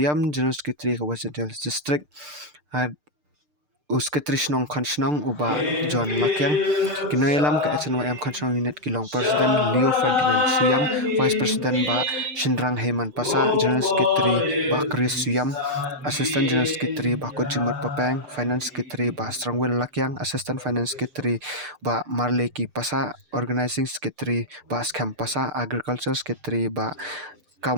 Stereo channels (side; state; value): left; late; 6.7 ms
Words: General Secretary Kawasan Hills District Secretary Snong Konsnong uba John Lakyang kinoilam ke HNYM Konsnong Unit Kilong Presiden Leo Ferdinand Suyam Vice President ba Shindrang Heyman Pasa General Secretary ba Chris Suyam Assistant General Secretary ba Kojimut Papang Finance Secretary ba Strongwell Lakyang Assistant Finance Secretary ba Marleki Pasa Organizing Secretary ba Skam Pasa Agriculture Secretary ba